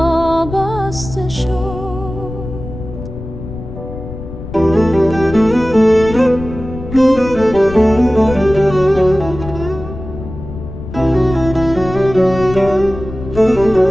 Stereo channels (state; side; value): noise; left; rumble, 11 dB below the sound